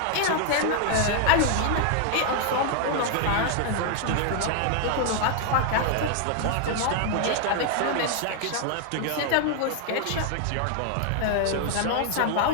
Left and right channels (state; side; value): different; both; correlation 0.00